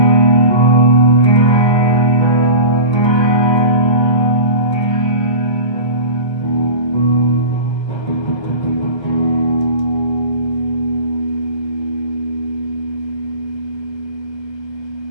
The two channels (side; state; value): right; late; 1.3 ms